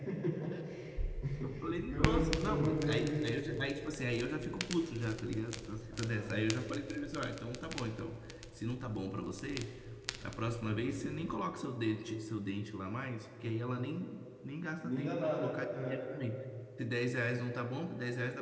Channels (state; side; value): identical; both; correlation 1.00